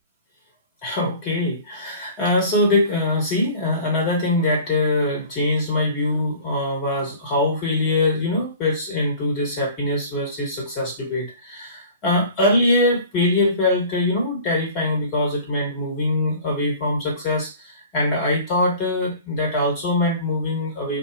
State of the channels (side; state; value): both; inverted; correlation -0.44